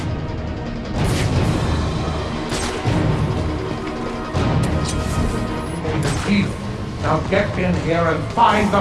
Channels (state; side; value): identical; both; correlation 1.00